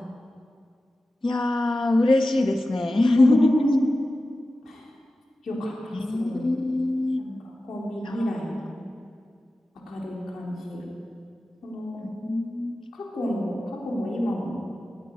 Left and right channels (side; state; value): both; normal; correlation 0.94